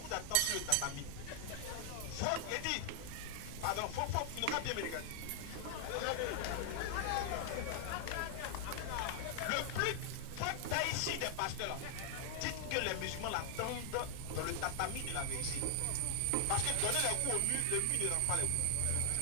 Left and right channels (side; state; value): both; different; correlation 0.00